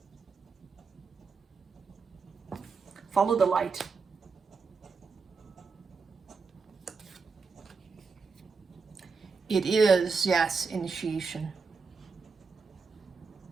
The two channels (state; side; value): quieter; left; 4.8 dB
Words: Follow the light. It is, yes, initiation